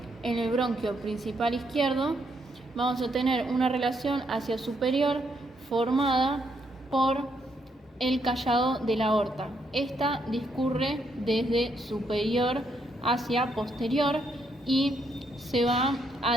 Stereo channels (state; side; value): normal; both; correlation 0.75